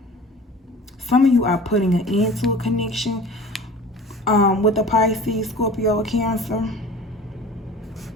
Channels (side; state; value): both; normal; correlation 0.41